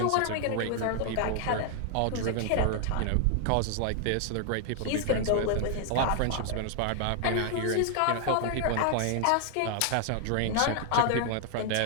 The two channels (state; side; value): different; both; correlation 0.00